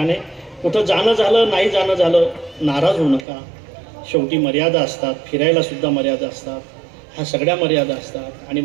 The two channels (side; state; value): left; drops out; at 3.2 s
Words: कुठं जाणं झालं, नाही जाणं झालं, नाराज होऊ नका. शेवटी मर्यादा असतात, फिरायला सुद्धा मर्यादा असतात, ह्या सगळ्या मर्यादा असतात. आणि